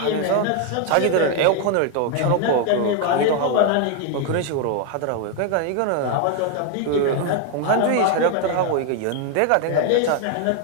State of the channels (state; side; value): different; both; correlation 0.00